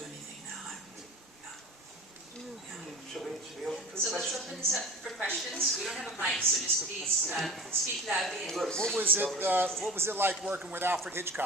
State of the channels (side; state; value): both; normal; correlation 0.37